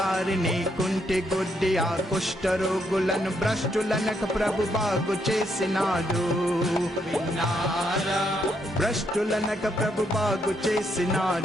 కుంటి గుడ్డి ఆ కుష్ఠరోగులను భ్రష్టులనక ప్రభు బాగు చేసినాడు విన్నారా భ్రష్టులనక ప్రభు బాగు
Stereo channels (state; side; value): normal; both; correlation 0.75